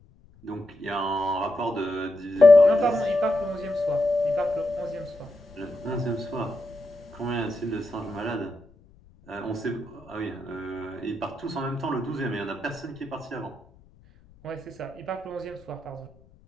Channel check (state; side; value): noise; left; rumble, 27 dB below the sound